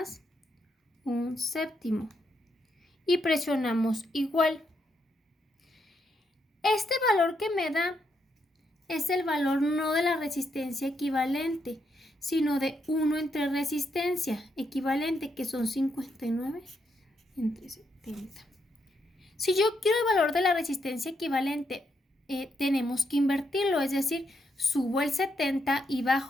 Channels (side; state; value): both; normal; correlation 0.79